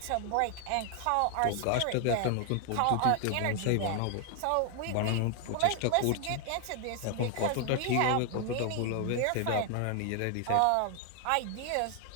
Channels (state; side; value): different; both; correlation 0.00